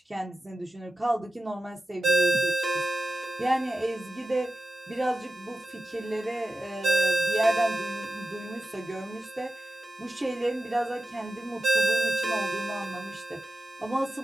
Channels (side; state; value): both; normal; correlation 0.92